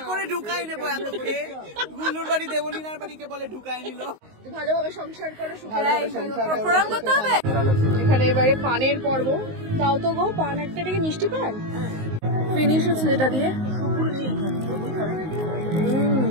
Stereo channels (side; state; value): left; late; 19 ms